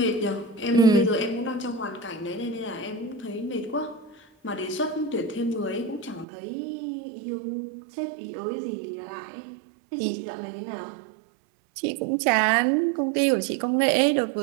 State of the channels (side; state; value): left; drops out; at 6.2 s